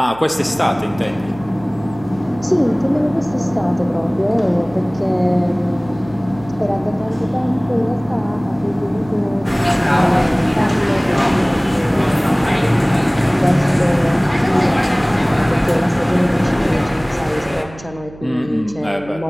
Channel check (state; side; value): noise; right; hum, 19 dB below the sound